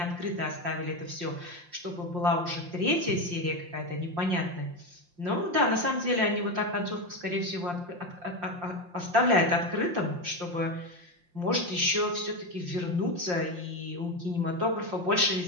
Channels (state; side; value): late; left; 5.7 ms